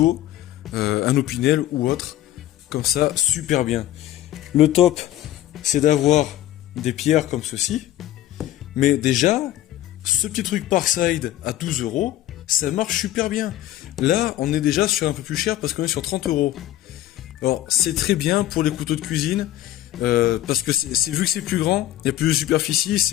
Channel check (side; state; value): right; quieter; 13.7 dB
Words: un Opinel ou autre, comme ça, super bien. Le top, c'est d'avoir des pierres comme ceci, mais déjà, ce petit truc Parkside à 12 €, ça marche super bien. Là, on est déjà sur un peu plus cher parce qu'on est sur 30 €. Alors, c'est très bien pour les couteaux de cuisine, parce que vu que c'est plus grand, il y a plus de superficie,